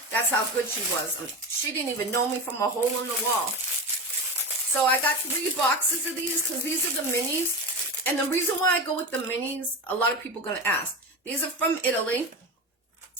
That's how good she was. She didn't even know me from a hole in the wall. So I got 3 boxes of these because these are the minis. And the reason why I go with the minis, a lot of people are going to ask. These are from Italy.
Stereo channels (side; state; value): both; normal; correlation 0.24